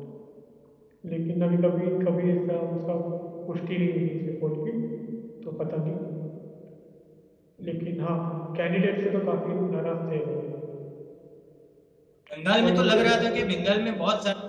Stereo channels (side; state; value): both; identical; correlation 1.00